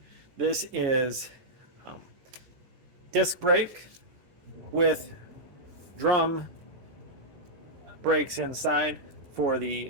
This is disc brake with drum brakes inside for the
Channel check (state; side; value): late; left; 14 ms